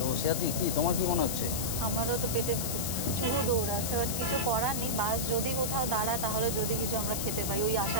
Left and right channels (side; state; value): left; noise; hiss, 3 dB below the sound